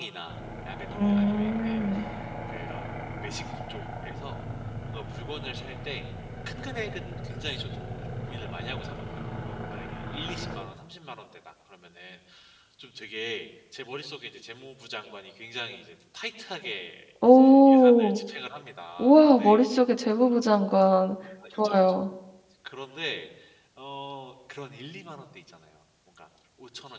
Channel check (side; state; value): both; identical; correlation 1.00